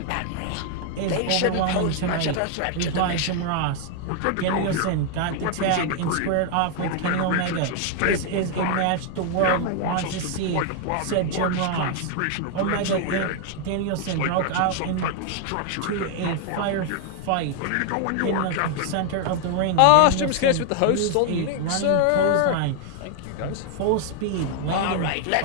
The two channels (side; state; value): both; different; correlation 0.00